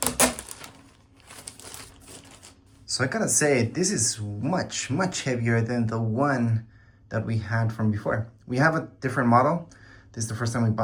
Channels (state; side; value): identical; both; correlation 1.00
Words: So I gotta say, this is much heavier than the one that we had from before. We have a different model. This is the first time we